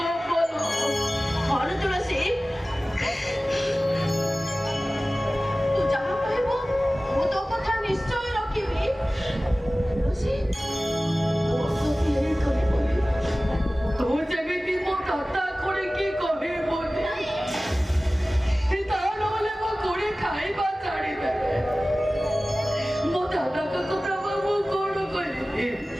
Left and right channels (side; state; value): both; normal; correlation 0.97